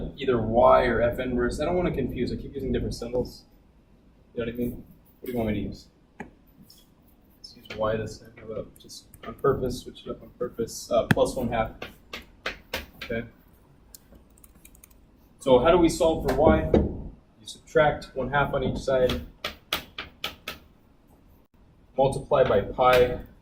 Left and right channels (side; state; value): both; identical; correlation 1.00